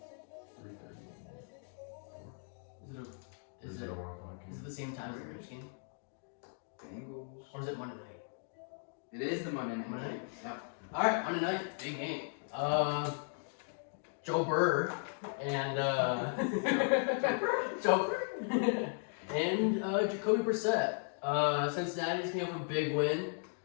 3:30. Is it Is it a 1 o'clock is it game? the same time as the Rams game? Bengals. It is the Monday night Monday game. night? Yep. All right, Monday night, big game. Joe Burr and Joe Burr and Jacoby Brissett. Cincinnati's came up with a big win.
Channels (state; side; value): silent; right; 53 dB below the other